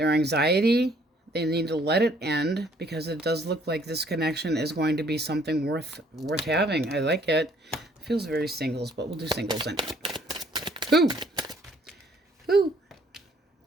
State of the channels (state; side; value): normal; both; correlation 0.62